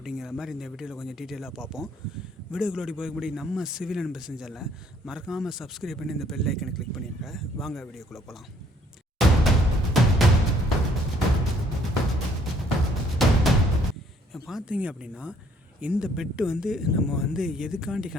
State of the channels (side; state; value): both; normal; correlation 0.64